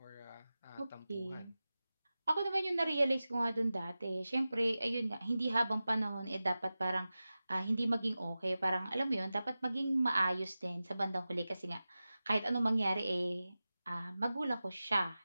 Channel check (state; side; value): inverted; both; correlation -0.95